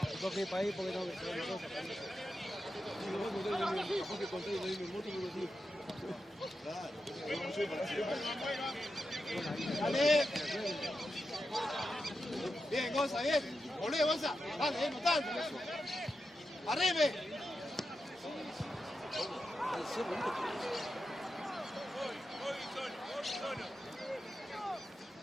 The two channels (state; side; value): normal; both; correlation 0.89